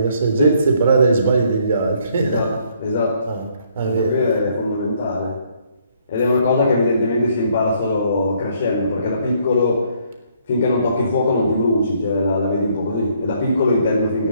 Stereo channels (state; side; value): inverted; both; correlation -0.67